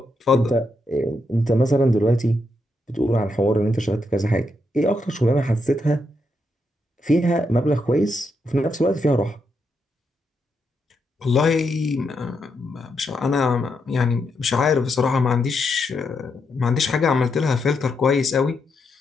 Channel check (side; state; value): both; normal; correlation 0.81